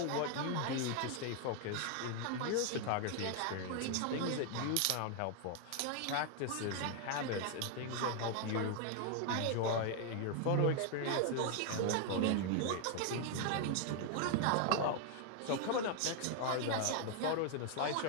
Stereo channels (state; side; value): different; both; correlation 0.01